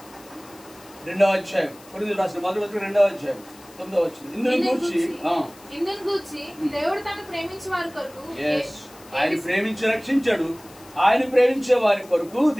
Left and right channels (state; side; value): noise; left; hiss, 23 dB below the sound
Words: రెండవ అధ్యాయం, కొరింథీయులకు రాసిన మొదటి పత్రిక 2వ అధ్యాయం 9వ వచనం. ఇందును గూర్చి దేవుడు తను ప్రేమించే వారి కొరకు, ఆయన ప్రేమించి రక్షించాడు. ఆయన ప్రేమించే వారి కొరకు